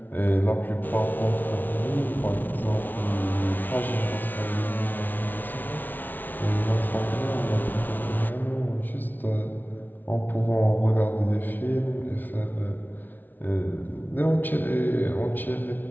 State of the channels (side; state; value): right; late; 0.085 ms